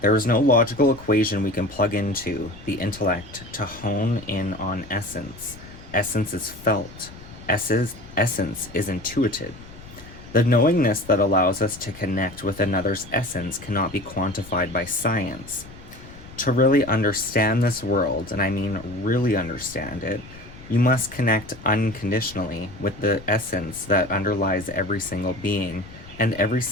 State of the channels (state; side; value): noise; left; rumble, 17 dB below the sound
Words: is no logical equation we can plug into the intellect to hone in on essence. Essence is felt. Essence is intuited. The knowingness that allows us to connect with another's essence cannot be quantified by science. To really understand this world, and I mean really understand it, you must connect unconditionally with the essence that underlies every single being and every